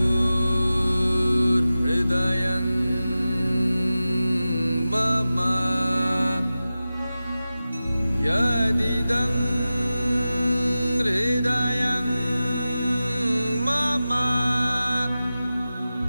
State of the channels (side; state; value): both; inverted; correlation -0.95